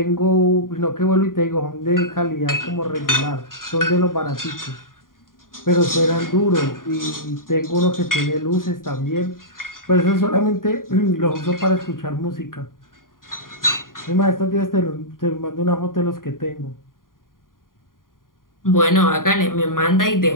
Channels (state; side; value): late; right; 0.90 ms